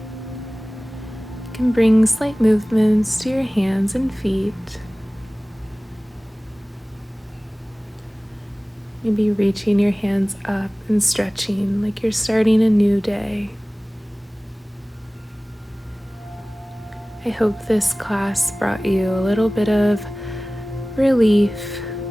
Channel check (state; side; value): normal; both; correlation 0.98